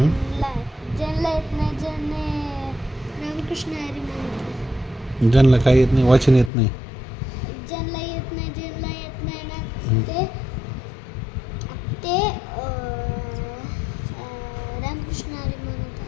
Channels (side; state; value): right; drops out; at 6.5 s